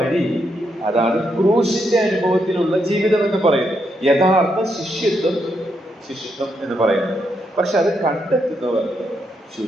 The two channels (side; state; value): both; normal; correlation 0.79